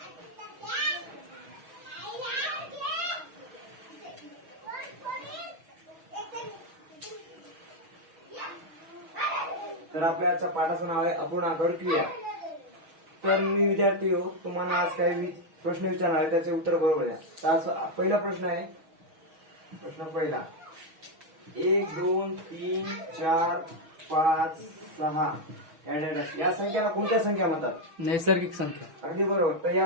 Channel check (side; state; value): left; late; 6.3 ms